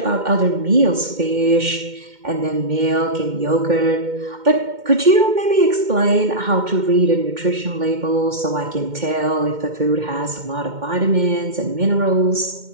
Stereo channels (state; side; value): late; left; 2.1 ms